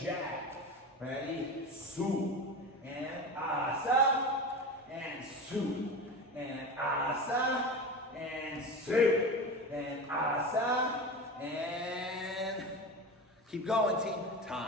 Ready? Su, and asa, and su, and asa, and su, and asa, and keep going, team.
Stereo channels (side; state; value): both; normal; correlation 0.27